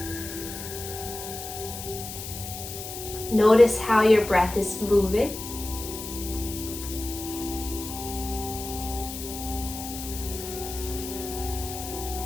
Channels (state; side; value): noise; left; hiss, 9 dB below the sound